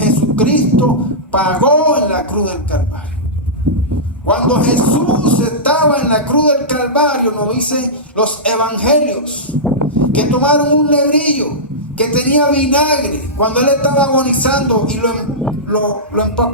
pagó en la cruz del Calvario. Cuando Jesús estaba en la cruz del Calvario, nos dicen los evangelios, que tomaron un lebrillo que tenía vinagre, cuando él estaba agonizando, y lo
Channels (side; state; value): both; normal; correlation -0.15